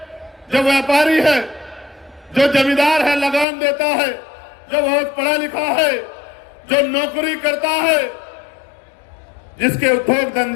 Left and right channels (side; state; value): right; drops out; at 3.5 s